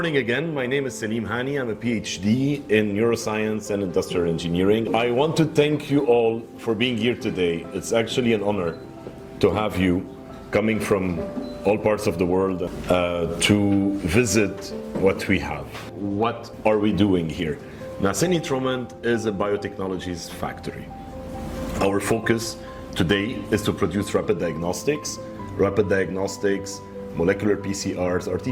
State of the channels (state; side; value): identical; both; correlation 1.00